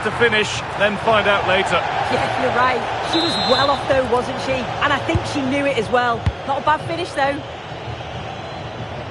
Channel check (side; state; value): both; identical; correlation 1.00